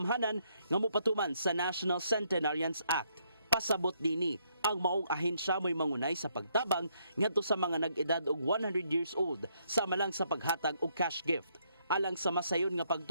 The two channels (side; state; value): both; inverted; correlation -0.73